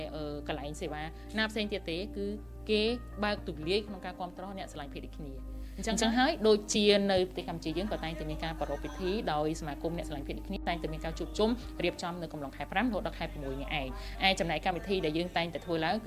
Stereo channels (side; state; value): right; noise; rumble, 25 dB below the sound